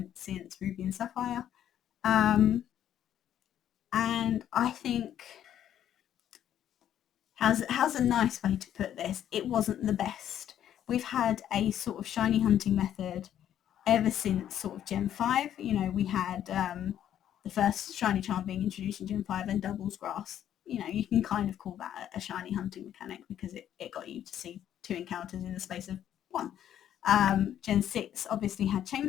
since Ruby and Sapphire. And I think, how's a nice way to put this? It wasn't the best. We've had a sort of shiny hunting method ever since sort of Gen 5. You know, we had the first shiny charm being introduced in Gen 5 and Doubles Grass. You know, you can kind of call that a shiny hunting mechanic because it got you to see 2 encounters in the space of 1. Gen 6 obviously had chain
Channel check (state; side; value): quieter; right; 10.6 dB